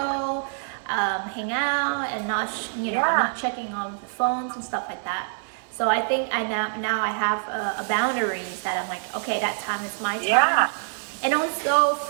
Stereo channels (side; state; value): left; silent; 56 dB below the other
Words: hang out, and not checking on the phones and stuff like that. So I think now I have a boundaries that I'm like, okay, that time is my time. Yeah. And also